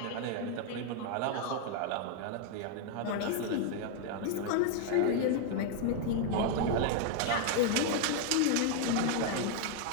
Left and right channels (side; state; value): both; different; correlation 0.00